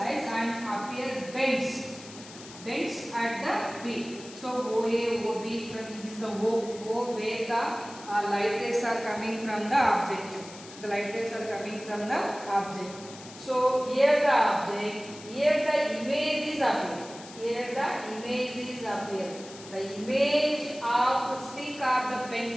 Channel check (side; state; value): left; noise; hiss, 17 dB below the sound